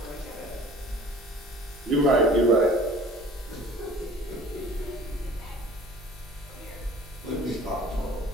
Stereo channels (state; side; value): normal; both; correlation 0.48